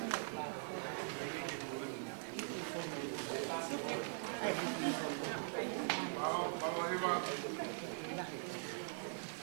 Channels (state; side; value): silent; left; digital silence